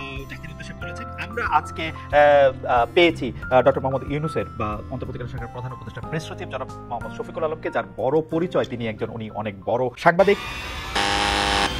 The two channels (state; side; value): identical; both; correlation 1.00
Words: জাতির উদ্দেশ্যে বলেছেন। আমরা আজকে পেয়েছি ডক্টর মোহাম্মদ ইউনূসের বা অন্তর্বর্তীকালীন সরকারের প্রধান উপদেষ্টা প্রেস সচিব জনাব মোহাম্মদ শফিকুল আলমকে, যার বড় পরিচয় তিনি একজন উনি অনেক বড় সাংবাদিক।